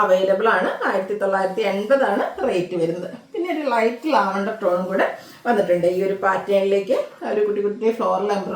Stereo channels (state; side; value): identical; both; correlation 1.00